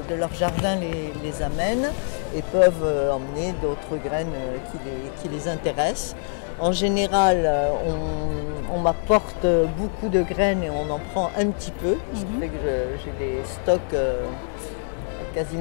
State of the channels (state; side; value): silent; right; 62 dB below the other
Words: leur jardin les amènent et peuvent emmener d'autres graines qui les intéressent. En général, on m'apporte beaucoup de graines et on en prend un petit peu, ce qui fait que j'ai des stocks